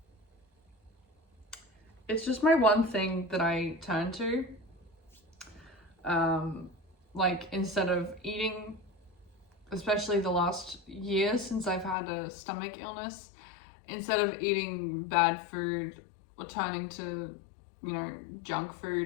It's just my one thing that I turn to. Like instead of eating, especially the last year since I've had a stomach illness, instead of eating bad food or turning to, you know, junk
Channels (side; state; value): right; drops out; at 12.0 s